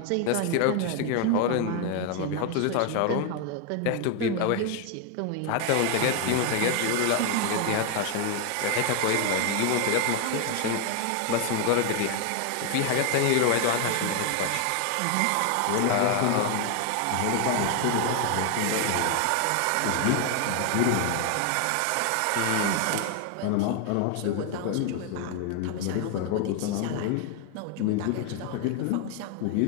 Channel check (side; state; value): both; different; correlation 0.01